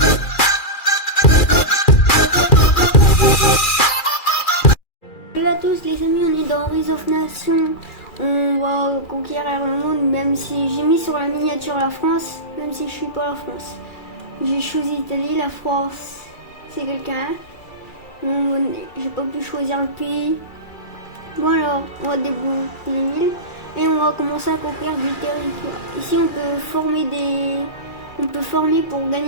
Salut à tous les amis, on est dans Rise of Nations. On va conquérir le monde, même si j'ai mis sur la miniature la France, même si je suis pas la France. J'ai choisi l'Italie, la France, c'est quelqu'un. J'ai pas pu choisir le pays. Bon alors, on va débloquer les villes et on va commencer à conquérir du territoire. Ici on peut former pour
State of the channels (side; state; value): right; late; 2.4 ms